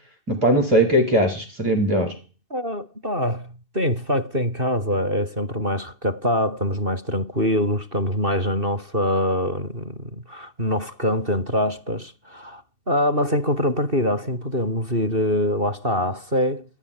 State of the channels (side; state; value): left; late; 2.6 ms